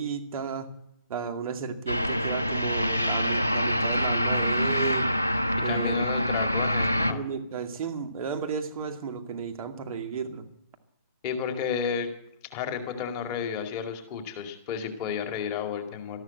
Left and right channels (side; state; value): both; inverted; correlation -0.67